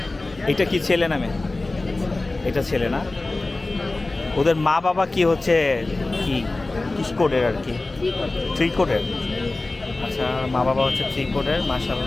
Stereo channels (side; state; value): right; quieter; 3.1 dB